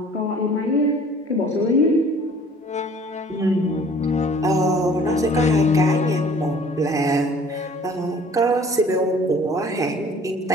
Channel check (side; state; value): both; normal; correlation 0.52